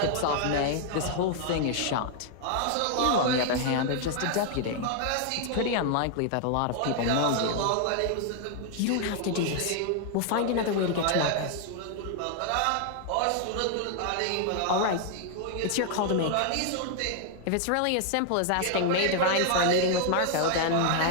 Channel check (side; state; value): both; different; correlation 0.00